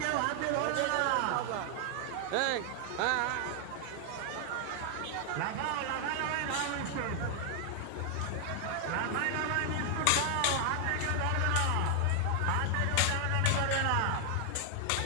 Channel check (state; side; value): different; both; correlation 0.00